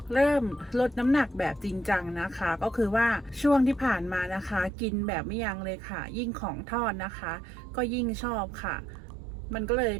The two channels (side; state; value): left; drops out; at 4.7 s